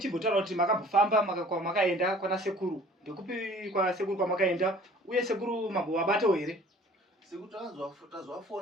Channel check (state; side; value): normal; both; correlation 0.50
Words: kuti makambofamba makaenda kwana sekuru. Ndekupi kwa sekuru kwamakaenda? Uye sekuru mambovabatawo here? Sekuru